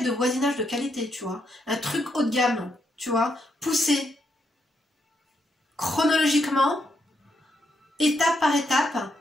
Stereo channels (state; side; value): normal; both; correlation 0.79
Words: de voisinage de qualité, tu vois? Un truc haut de gamme. tu vois, pousser chronologiquement, étape par étape,